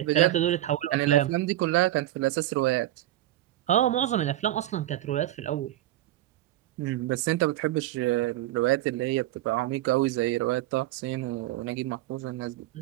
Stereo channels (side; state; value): left; quieter; 14.6 dB